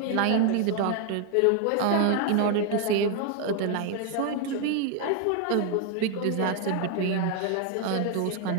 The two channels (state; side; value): different; both; correlation 0.01